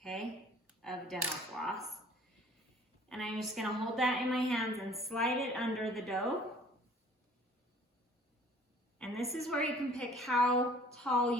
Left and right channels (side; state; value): both; normal; correlation 0.52